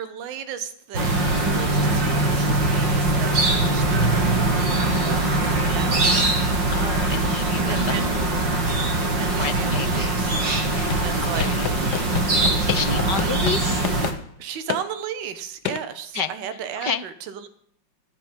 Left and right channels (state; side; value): late; left; 5.6 ms